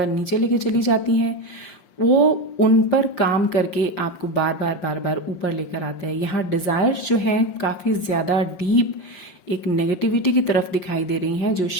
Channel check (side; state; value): right; late; 5.6 ms